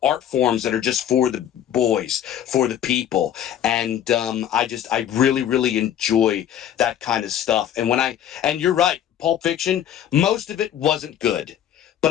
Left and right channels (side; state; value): right; quieter; 10.4 dB